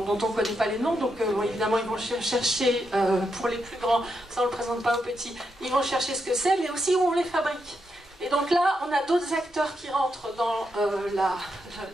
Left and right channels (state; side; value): normal; both; correlation 0.83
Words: ne connaît pas les noms, donc évidemment, ils vont chercher, pour les plus grands, ça on ne le présente pas aux petits, ils vont chercher ce que c'est, mais aussi où on les fabrique. Et donc là, on a d'autres acteurs qui rentrent dans